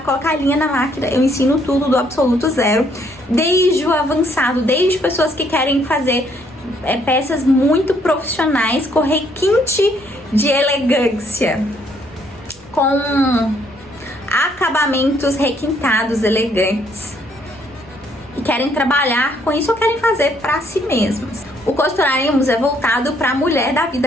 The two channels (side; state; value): right; noise; rumble, 28 dB below the sound